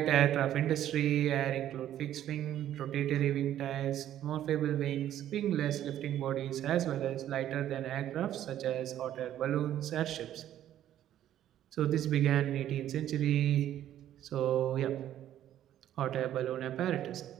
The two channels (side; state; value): left; quieter; 11.7 dB